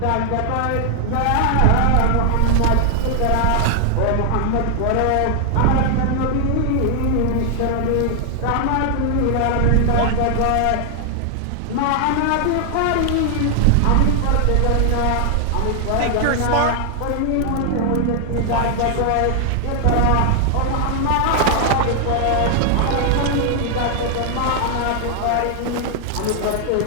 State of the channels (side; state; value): both; different; correlation 0.00